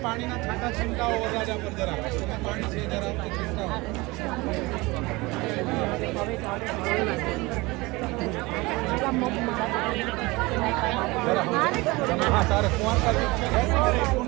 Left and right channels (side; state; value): left; quieter; 22.9 dB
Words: પાણીના છાંટા છંટાઓ વરરાજા પર જરા પાણી છે જરા છંટાઓ. હા તારે કુંવારકા